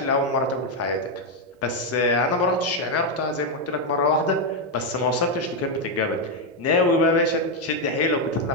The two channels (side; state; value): both; normal; correlation 0.03